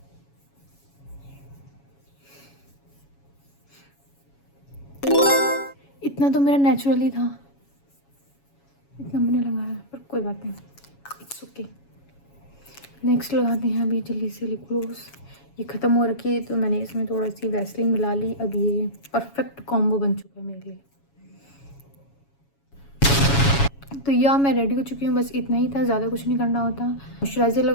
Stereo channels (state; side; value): late; right; 7.2 ms